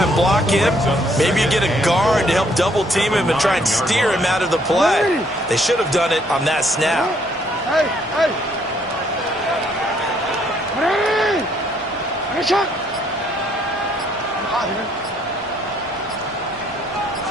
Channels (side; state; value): both; normal; correlation 0.67